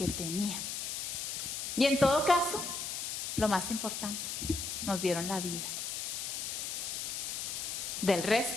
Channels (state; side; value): noise; left; hiss, 3 dB below the sound